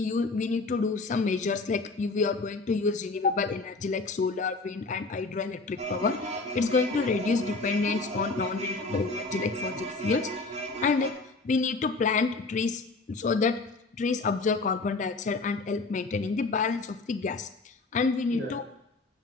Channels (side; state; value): right; quieter; 3.7 dB